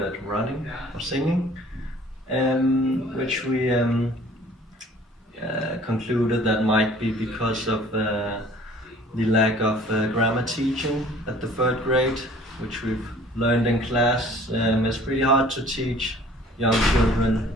at running or singing, which we concluded that might be because of the lack of grammar teaching at the 3rd grade, which we've learned in class. It's pretty hard to teach young children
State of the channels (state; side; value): normal; both; correlation 0.52